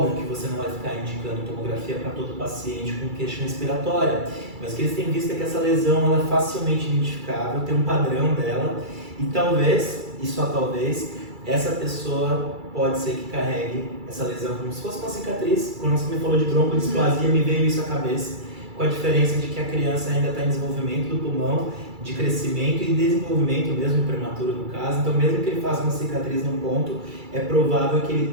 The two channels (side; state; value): left; late; 2.3 ms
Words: que você não vai ficar indicando tomografia para todo paciente com queixa respiratória, mas o que eles têm visto é que essa lesão ela é facilmente identificável, tem um padrão dela e talvez, e só talvez, essa pessoa pode ser que carregue essa lesão como se fosse uma cicatriz. Quando você me falou de broncodisplasia, me veio isso à cabeça, com a diferença de que a criança ainda está em desenvolvimento do pulmão, de crescimento e desenvolvimento mesmo prematuro no caso, então mesmo que ele faça uma cicatriz num ponto, é provável que